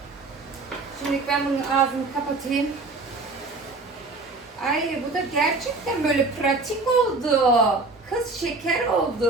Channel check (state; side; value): quieter; left; 3.6 dB